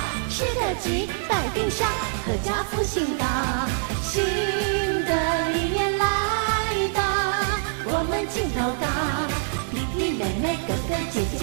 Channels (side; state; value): left; silent; digital silence